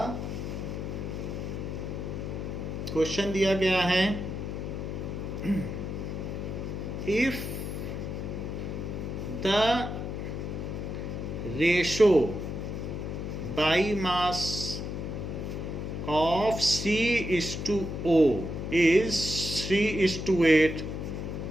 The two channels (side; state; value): left; noise; hum, 5 dB below the sound